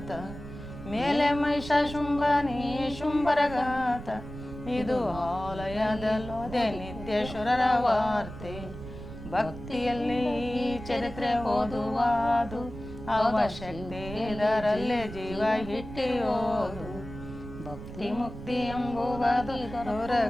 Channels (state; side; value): noise; right; rumble, 12 dB below the sound